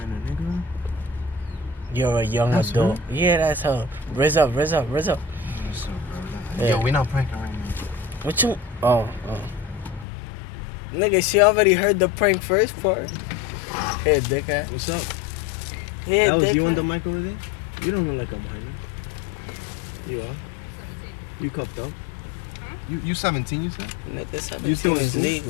nigga. You're a young That's adult. Yeah, that's her. Raise up. What's up, bro? Yeah. Yo, we not pranking right now. What you? Oh. Nigga, she already heard the prank first part. Hey, dickhead. What's up? Hey, That was dickhead. you on the mic over there? You don't look like a minor. You are? You cuffed up? You 17, you said? Nigga, You 17 still in is school?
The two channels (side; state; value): right; drops out; at 10.1 s